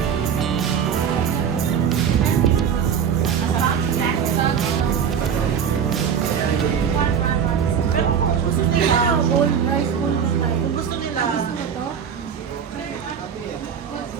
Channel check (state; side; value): quieter; left; 7.6 dB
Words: Bowl, rice bowl na tayo. Kung gusto nila. Gusto mo to?